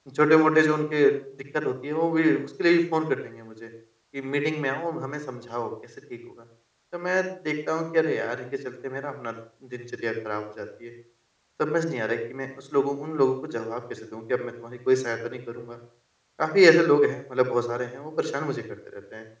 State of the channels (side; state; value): both; identical; correlation 1.00